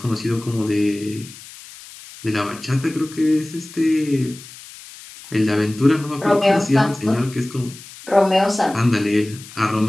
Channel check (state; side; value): noise; left; hiss, 18 dB below the sound